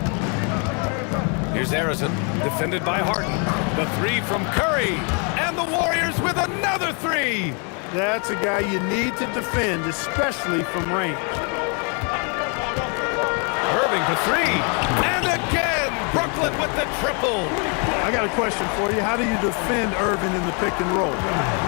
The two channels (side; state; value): right; quieter; 36.5 dB